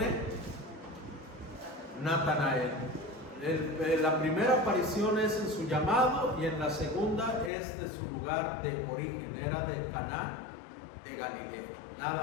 Natanael. La primera aparición es en su llamado, y en la segunda es de su lugar de origen, era de Caná de Galilea,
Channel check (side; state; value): right; drops out; at 7.5 s